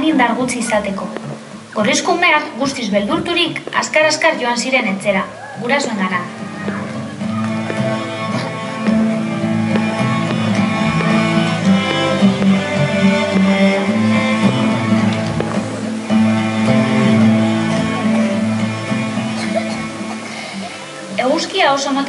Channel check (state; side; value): identical; both; correlation 1.00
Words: indar gutxi izateko. Gorlizko umeak guztiz beldurturik azkar-azkar joan ziren etxera, gurasoengana. Eguzkia oso